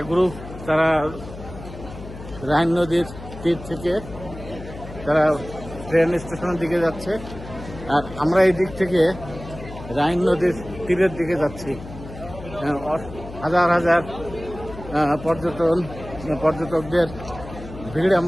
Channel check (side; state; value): left; noise; hum, 13 dB below the sound